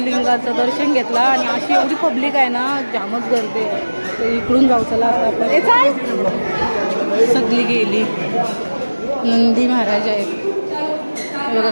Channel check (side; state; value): both; inverted; correlation -1.00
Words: दर्शन घेतला आणि अशी एवढी पब्लिक आहे ना, जामच गर्दी आहे. तर इकडून जाऊ चला आता आपण. सगळी गेली. नंदी महाराज आहेत बघा